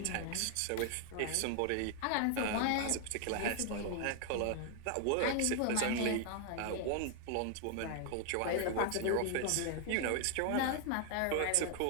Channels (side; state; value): both; different; correlation 0.00